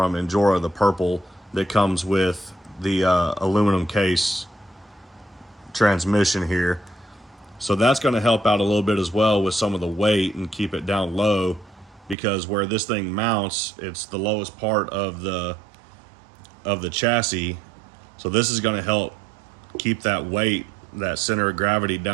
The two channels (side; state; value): left; drops out; at 12.2 s